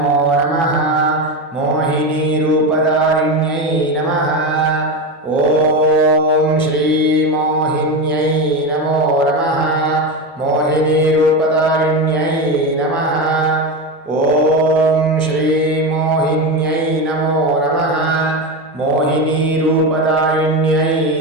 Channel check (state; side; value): normal; both; correlation 0.17